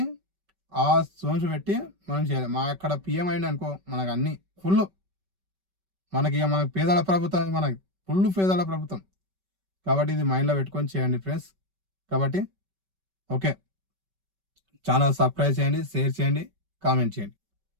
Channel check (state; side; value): late; left; 5.2 ms